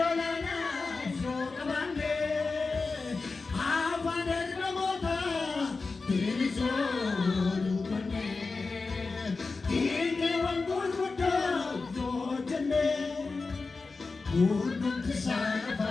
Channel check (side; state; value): right; quieter; 4.0 dB